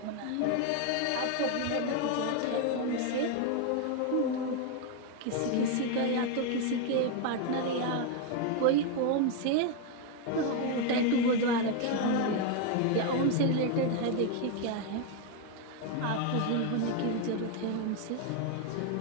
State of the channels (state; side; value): different; both; correlation 0.01